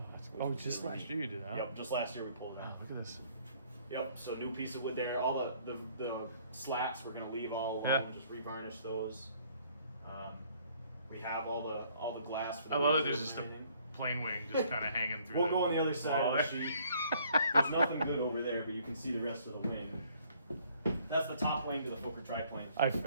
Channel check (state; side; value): inverted; both; correlation -0.61